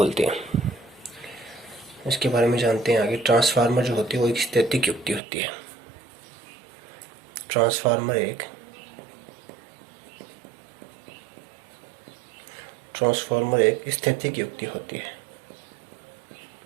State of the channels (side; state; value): left; drops out; at 5.2 s